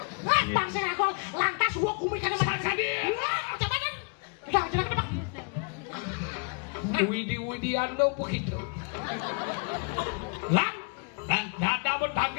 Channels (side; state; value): right; quieter; 34.5 dB